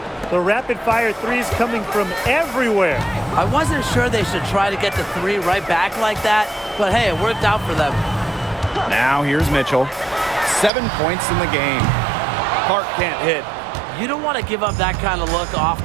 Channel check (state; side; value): drops out; left; at 10.7 s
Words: The rapid-fire threes coming from everywhere. I wasn't sure they should try to get the 3 right back like that, but hey, it worked out for them. Now here's Mitchell. 7 points in the game. Clark can't hit. You don't want to give up that kind of look